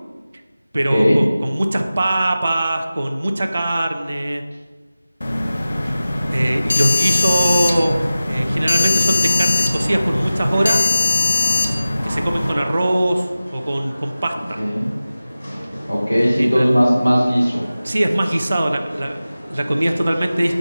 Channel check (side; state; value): both; inverted; correlation -0.95